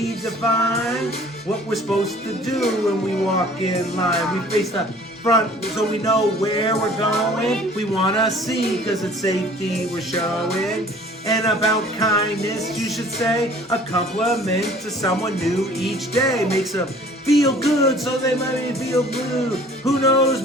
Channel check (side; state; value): both; normal; correlation 0.51